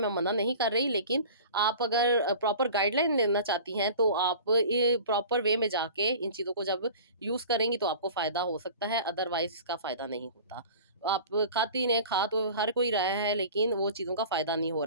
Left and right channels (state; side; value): inverted; both; correlation -0.40